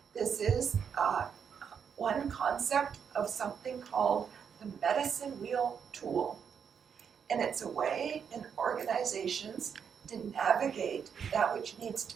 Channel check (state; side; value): quieter; left; 7.2 dB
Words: This is one concept of something called the medicine wheel tool. And it's a way in organizations to navigate that which needs to